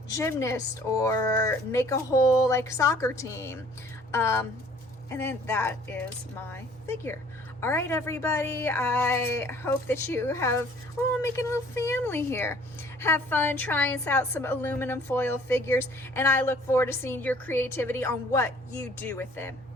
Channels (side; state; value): both; normal; correlation 0.55